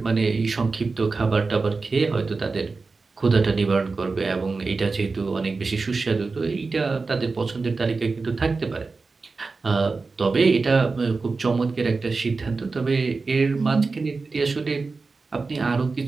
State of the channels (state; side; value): quieter; left; 4.1 dB